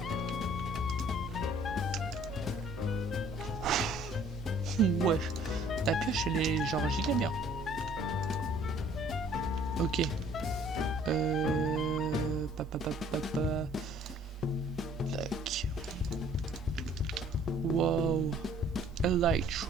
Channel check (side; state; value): both; normal; correlation 0.57